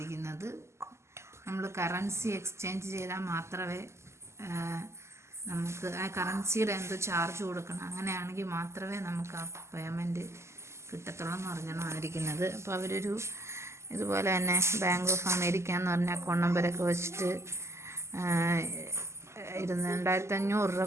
നമ്മൾ കറൻസി എക്സ്ചേഞ്ച് ചെയ്താൽ മാത്രമേ നമുക്ക് ആ കറൻസിയുടെ എന്തോ ചാർജ് കൊടുക്കണം, അങ്ങനെയാണെങ്കിൽ മാത്രമേ നമുക്ക് ആ പേയ്മെൻറ്റ് കിട്ടത്തുള്ളൂ എന്ന് പറഞ്ഞാണ് വന്നിരിക്കുന്നത്. അപ്പോൾ അവരൊരു ഇതുപോലെ തന്നെ ബാങ്ക് ഓഫ് അമേരിക്ക എന്ന് പറഞ്ഞ അക്കൗണ്ട് നമ്പരൊക്കെ വെച്ചിട്ട്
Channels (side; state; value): left; late; 0.13 ms